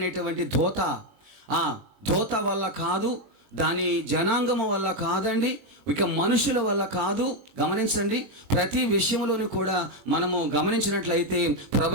దోత వల్ల కాదు, దాని జనాంగము వల్ల కాదండి, ఇక మనుషుల వల్ల కాదు. గమనించండి, ప్రతి విషయంలోనూ కూడా మనము గమనించినట్లయితే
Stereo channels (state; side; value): late; left; 21 ms